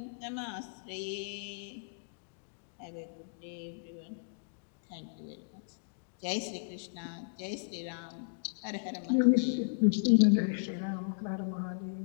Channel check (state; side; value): silent; right; digital silence